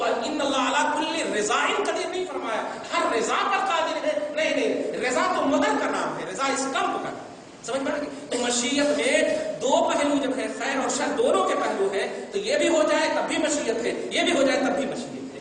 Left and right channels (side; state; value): both; identical; correlation 1.00